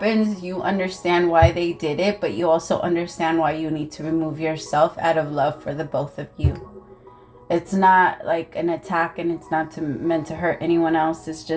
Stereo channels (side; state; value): both; identical; correlation 1.00